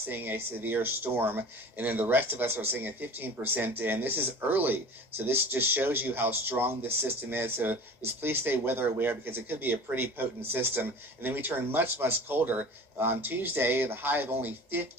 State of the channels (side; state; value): both; normal; correlation 0.39